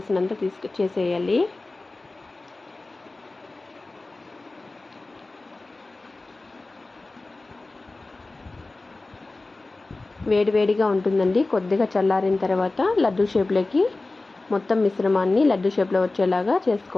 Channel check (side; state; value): right; quieter; 3.2 dB